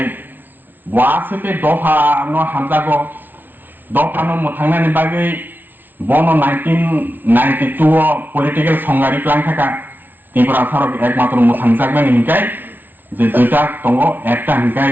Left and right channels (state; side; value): late; left; 0.090 ms